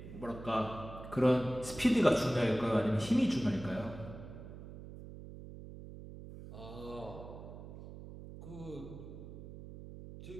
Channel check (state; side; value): noise; right; hum, 13 dB below the sound